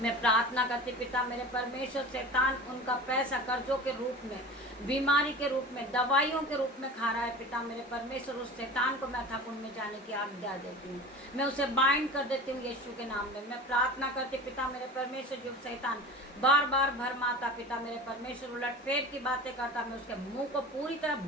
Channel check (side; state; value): both; normal; correlation 0.35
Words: प्रार्थना करती पिता मेरे परमेश्वर, शैतान उनका पैसा कर्जों के रूप में, बीमारी के रूप में, दवाइयों के रूप में खा रहा है पिता मेरे परमेश्वर, उस शैतान को मैं अथाह कुंड में जाने की आज्ञा देती हूँ, मैं उसे बाइंड कर देती हूँ यीशु के नाम में। मैं प्रार्थना करती पिता मेरे परमेश्वर, जो शैतान बार बार भरमाता पिता मेरे परमेश्वर, उलटफेर की बातें करता, मैं उसके मुंह को पूरी तरह